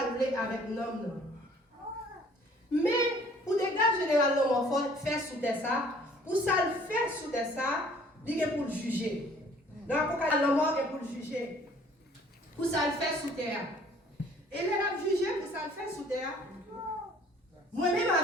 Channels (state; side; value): normal; both; correlation 0.56